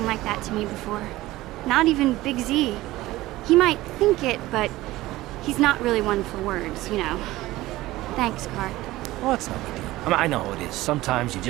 like that to me before. Not even Big Z. He might think it, but he's not really one for words, you know. Thanks, Karth. Well, it's no big deal. I mean, I know it is. Sometimes you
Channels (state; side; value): quieter; left; 17.4 dB